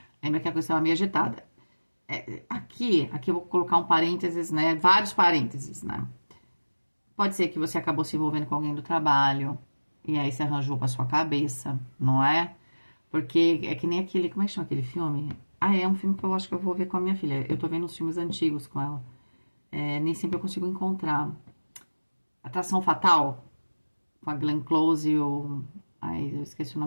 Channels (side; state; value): both; inverted; correlation -1.00